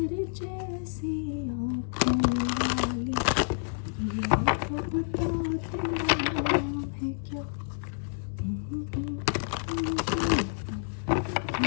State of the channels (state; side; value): silent; right; 58 dB below the other